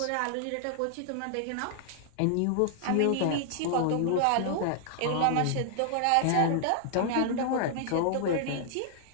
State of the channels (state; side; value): different; both; correlation 0.00